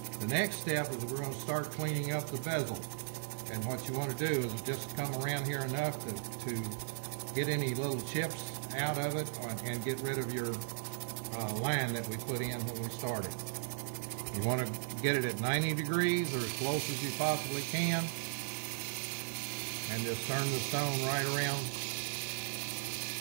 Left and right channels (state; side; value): silent; left; digital silence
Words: The next step is we're going to start cleaning up the bezel. And what you want to do is just come around here enough to get any little chips out of it and get rid of your line that we put in when we started. You want to get it at 90 degrees or as close as you possibly can, and just turn the stone right around